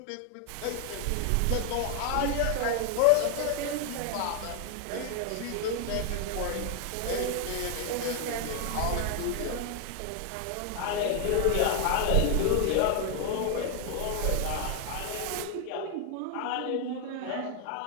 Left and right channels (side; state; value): both; different; correlation 0.01